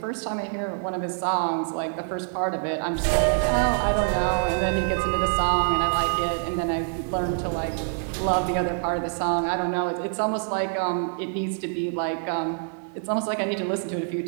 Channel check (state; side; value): silent; left; 61 dB below the other